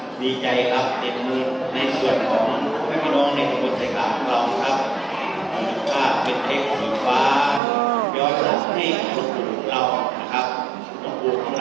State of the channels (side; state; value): left; drops out; at 7.6 s